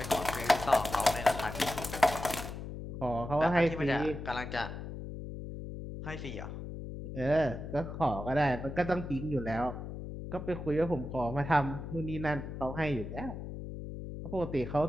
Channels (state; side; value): noise; left; hum, 8 dB below the sound